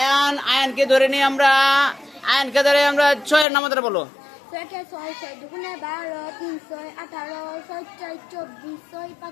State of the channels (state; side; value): drops out; right; at 3.5 s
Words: ধরে নিয়ে আমরা, আয়ানকে ধরে আমরা 6 এর নামতা বলো। 6 কে 6, 6 দুগুণে 12, 3 6 18, 6 4 24, 6